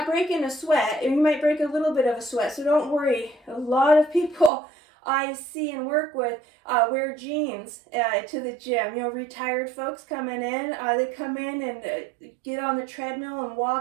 breaking a sweat, and you might break a little bit of a sweat, so don't worry. A lot of people I see and work with wear jeans to the gym. Retired folks coming in, they come in and get on the treadmill and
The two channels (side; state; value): left; drops out; at 4.5 s